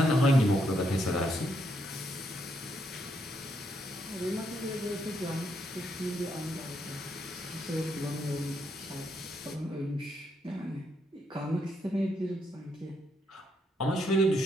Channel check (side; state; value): both; normal; correlation 0.76